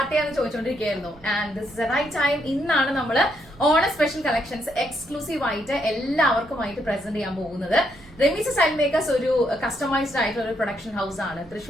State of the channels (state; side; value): noise; right; rumble, 23 dB below the sound